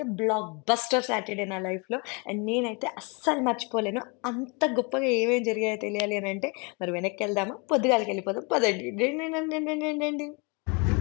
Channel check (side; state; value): right; quieter; 31.4 dB